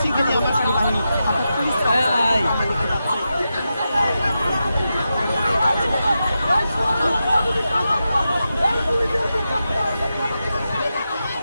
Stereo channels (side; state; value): both; inverted; correlation -0.89